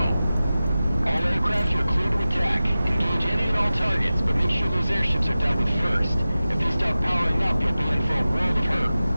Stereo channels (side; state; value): both; inverted; correlation -0.95